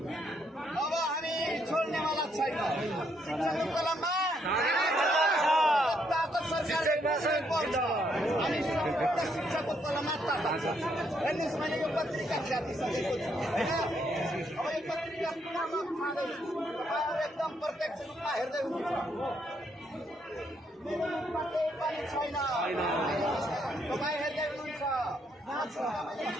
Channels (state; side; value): normal; both; correlation 0.74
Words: अब हामी छोड्नेवाला छैन। शिक्षाको कलममा सरकारले पर्छ अनि शिक्षाको कलममा हेर्नुहोस् मैले यो पत्रिका छापिसकेको छु होइन। अब यो पत्रिका पुनः खाँदैछु तपाईँहरू एकदम प्रत्यक्ष रूपमा हेर्दै हुनुहुन्छ। मेरो मुखमा केही पनि छैन तपाईँ हेर्दै हुनुहुन्छ